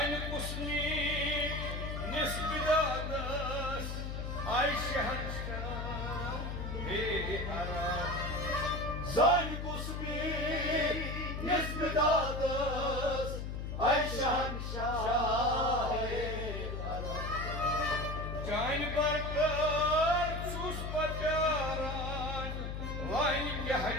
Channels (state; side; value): noise; left; hum, 5 dB below the sound